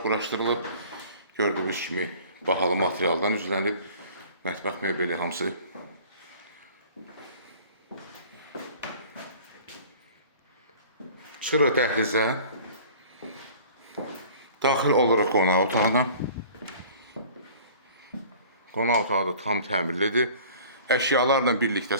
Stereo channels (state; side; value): inverted; both; correlation -0.47